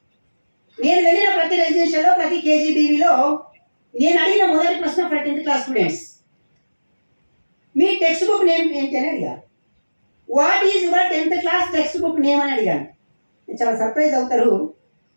నేను వెళ్ళిన ప్రతి రెసిడెన్షియల్లో ప్రతి కేజీబీవీలో నేను అడిగిన మొదటి ప్రశ్న ఫర్ 10th class స్టూడెంట్స్, మీ టెక్స్ట్ బుక్ నేమ్ ఏంటి అని అడిగాను. What is your 10th class text book name అని అడిగాను. చాలా సర్ప్రైజ్ అవుతారు.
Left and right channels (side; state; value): both; inverted; correlation -1.00